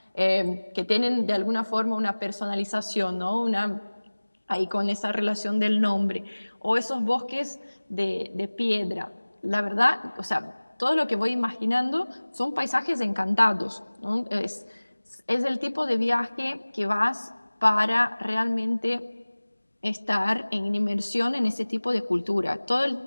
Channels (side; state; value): both; inverted; correlation -1.00